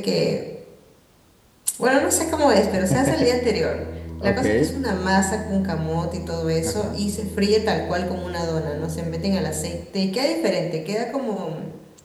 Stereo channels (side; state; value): both; identical; correlation 1.00